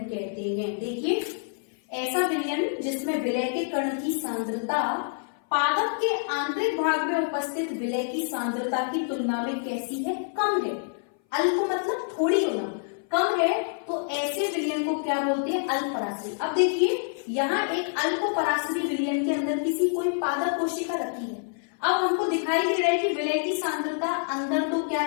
कहते हैं। देखिए, ऐसा विलयन जिसमें विलय के कण की सांद्रता पादप के आंतरिक भाग में उपस्थित विलय की सांद्रता की तुलना में कैसी है? कम है। अल्प मतलब थोड़ी होना, कम है, तो ऐसे विलयन को क्या बोलते हैं? अल्प परासरी। अब देखिए, यहाँ एक अल्प परासरी विलयन के अंदर किसी कोई पादप कोशिका रखी है। अब हमको दिखाई दे रहा है कि विलय की सांद्रता अंदर तो क्या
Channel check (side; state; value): right; silent; 58 dB below the other